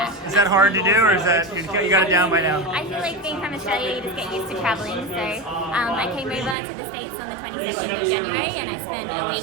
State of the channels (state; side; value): drops out; left; at 6.6 s